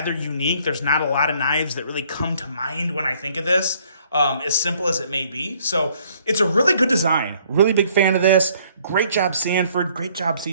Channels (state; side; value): inverted; both; correlation -0.62